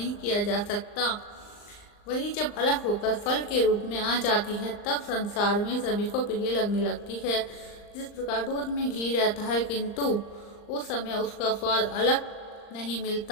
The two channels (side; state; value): right; late; 39 ms